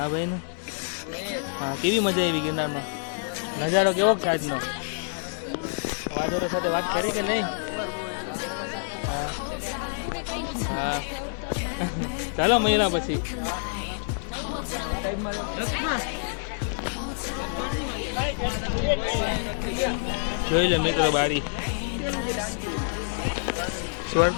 ભાઈનું. હા કેવી મજા આવી ગિરનારમાં? નજારો કેવો છે આજનો? વાદળો સાથે વાત કરી કે નહીં? હા હા ચાલો મળ્યા પછી. જોઈ લે મિત્રો બારી,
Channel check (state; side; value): silent; right; digital silence